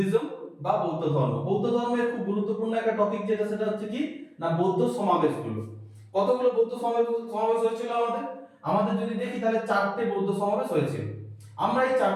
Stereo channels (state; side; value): identical; both; correlation 1.00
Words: বা বৌদ্ধ ধর্ম। বৌদ্ধ ধর্মের খুব গুরুত্বপূর্ণ একটা টপিক যেটা, সেটা হচ্ছে কি না বৌদ্ধ সমাবেশগুলো। কতগুলো বৌদ্ধ সমাবেশ হয়েছিল আমাদের? আমাদের যদি দেখি তাহলে 4টে বৌদ্ধ সমাবেশ হয়েছিল। আমরা এই